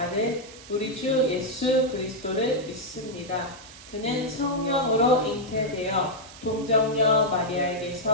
우리 주 예수 그리스도를 믿습니다. 그는 성령으로 잉태되어 동정녀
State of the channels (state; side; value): noise; right; hiss, 18 dB below the sound